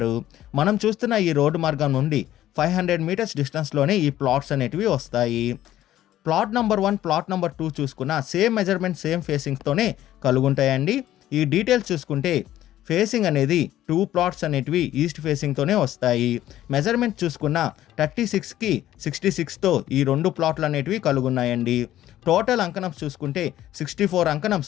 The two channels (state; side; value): quieter; right; 13.2 dB